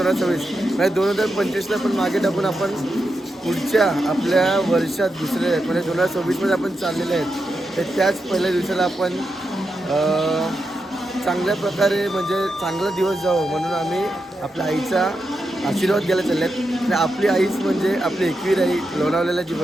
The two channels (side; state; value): both; normal; correlation 0.86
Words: म्हणजे 2025ला पण मागे टाकून आपण पुढच्या आपल्या वर्षात दुसरे म्हणजे 2026मध्ये आपण चाललेले आहेत. तर त्याच पहिल्या दिवसाला आपण चांगल्या प्रकारे म्हणजे चांगला दिवस जावं म्हणून आम्ही आपल्या आईचा आशीर्वाद घ्यायला चालले आहेत. आणि आपली आईच म्हणजे आपली एकवीर आई लोणावळ्याला जी